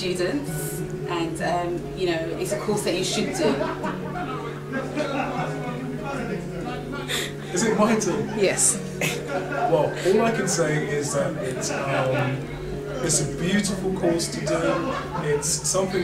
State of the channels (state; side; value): identical; both; correlation 1.00